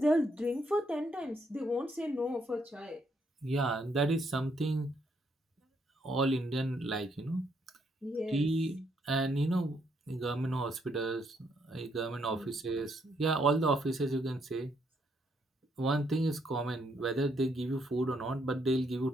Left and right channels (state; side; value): normal; both; correlation 0.73